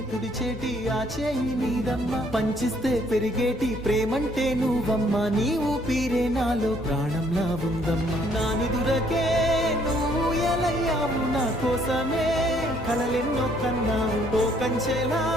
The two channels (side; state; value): both; normal; correlation 0.65